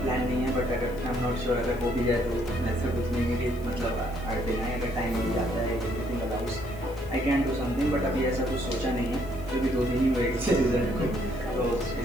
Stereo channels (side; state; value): left; noise; hiss, 23 dB below the sound